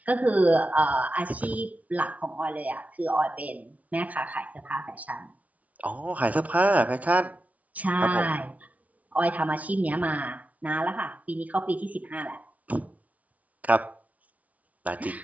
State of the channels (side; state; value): left; late; 0.070 ms